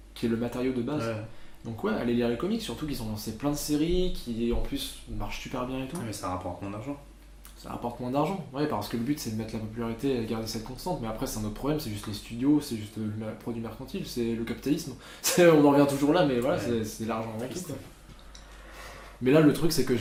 qui est le matériau de base. Ouais. Donc, ouais, allez lire les comics, surtout qu'ils ont lancé plein de séries qui, en plus, marchent super bien et tout. Ouais, mais ça rapporte moins d'argent. Ça rapporte moins d'argent, ouais, parce que le but c'est de mettre la popularité et de garder cette constante, mais après c'est un autre problème, c'est juste les studios, c'est juste le produit mercantile, c'est le capitalisme. On en revient toujours là, mais voilà, Ouais. c'est l'argent avant tout, quoi. Mais là le truc c'est que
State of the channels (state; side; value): identical; both; correlation 1.00